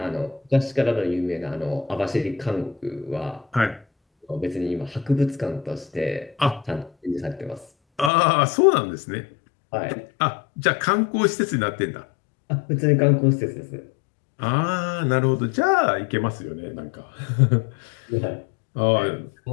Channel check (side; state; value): right; drops out; at 8.1 s